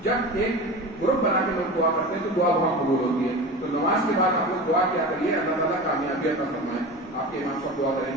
جب ایک گروپ بنا کے لوگ دعا کرتے ہیں تو دعا بہت قبول ہوتی ہے. تو نماز کے بعد آپ لوگ دعا کیا کریے, اللہ تعالیٰ کامیابی عطا فرمائے. آپ کے امام صاحب دعا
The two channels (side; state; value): both; normal; correlation 0.31